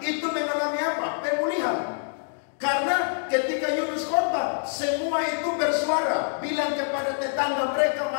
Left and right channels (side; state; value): right; silent; digital silence